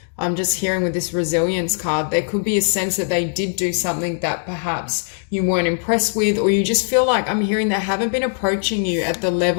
I'm just hearing with this resilience card, there could be a sense that they did do something that perhaps you weren't impressed with, or you just feel like, I'm hearing they haven't been approaching you at the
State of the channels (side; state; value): right; silent; digital silence